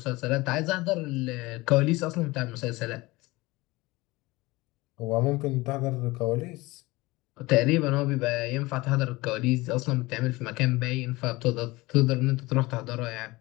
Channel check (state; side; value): quieter; right; 21.4 dB